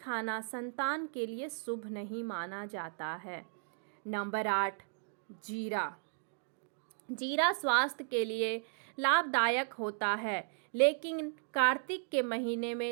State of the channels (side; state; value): left; silent; digital silence